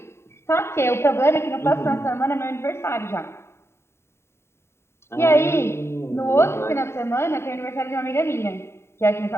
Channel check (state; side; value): late; right; 0.12 ms